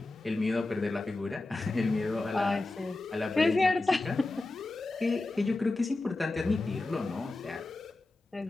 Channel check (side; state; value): right; quieter; 3.0 dB